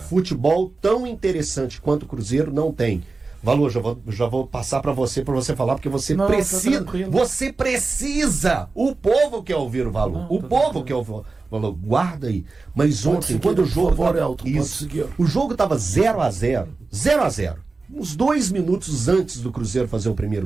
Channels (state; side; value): quieter; left; 3.9 dB